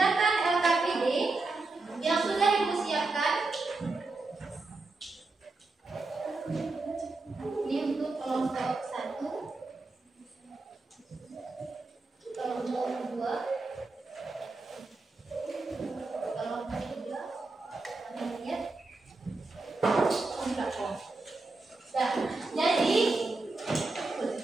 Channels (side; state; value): left; quieter; 3.4 dB